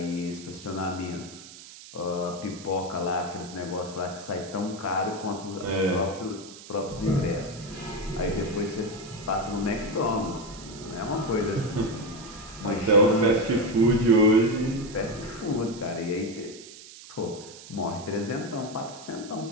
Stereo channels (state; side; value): noise; right; hiss, 16 dB below the sound